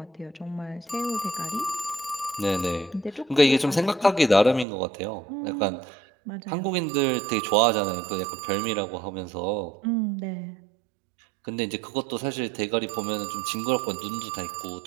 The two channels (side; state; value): left; drops out; at 4.7 s